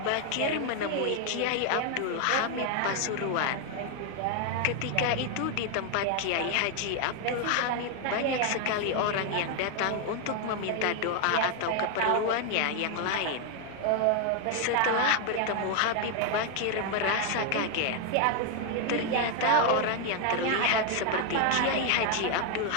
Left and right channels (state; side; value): different; both; correlation 0.00